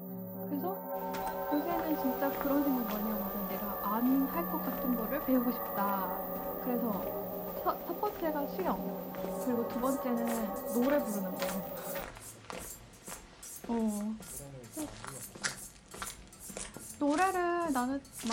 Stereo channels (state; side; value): identical; both; correlation 1.00